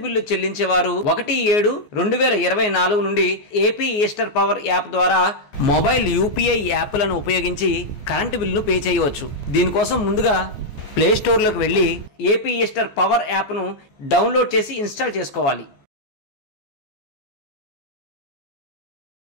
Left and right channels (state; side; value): late; right; 14 ms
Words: బిల్లు చెల్లించేవారు 1/7/2024 నుండి ఏపీ ఈస్టర్ పవర్ యాప్ ద్వారా మొబైల్ యూపీఐ యాప్లను ఉపయోగించి కరెంటు బిల్లును పే చేయవచ్చు. దీనికోసం ముందుగా ప్లే స్టోర్లోకి వెళ్ళి ఏపీ ఈస్టర్ పవర్ యాప్ను డౌన్లోడ్ చేసి ఇన్స్టాల్ చేసుకోవాలి.